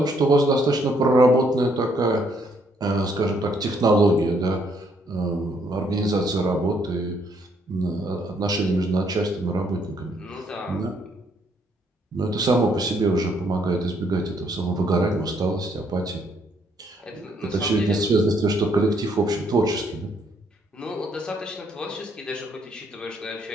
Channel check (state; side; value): normal; both; correlation 0.69